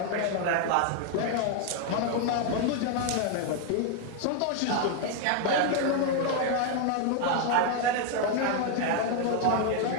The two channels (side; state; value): both; different; correlation 0.00